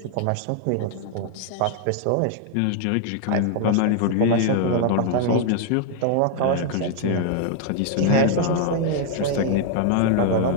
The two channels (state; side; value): different; both; correlation 0.00